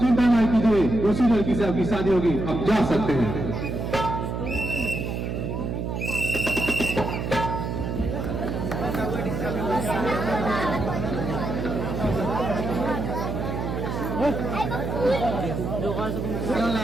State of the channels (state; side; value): noise; right; hum, 3 dB below the sound